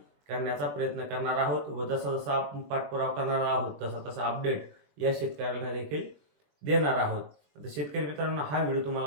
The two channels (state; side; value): late; left; 21 ms